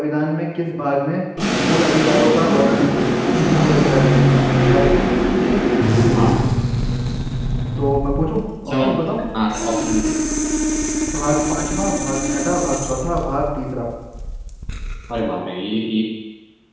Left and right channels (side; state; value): both; identical; correlation 1.00